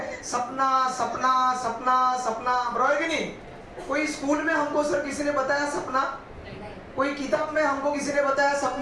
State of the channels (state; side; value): identical; both; correlation 1.00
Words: सपना सपना सपना सपना, बराबर कि नहीं? कोई स्कूल में हमको सर किसी ने बताया सपना? कोई किताब में हमको किसी ने बताया